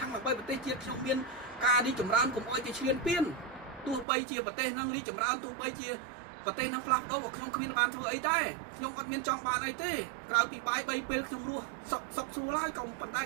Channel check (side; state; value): left; drops out; at 4.0 s